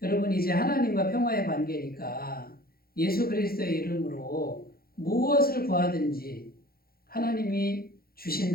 여러분, 이제 하나님과 평화의 관계니까 예수 그리스도의 이름으로 무엇을 구하든지 하나님이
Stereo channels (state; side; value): late; right; 0.44 ms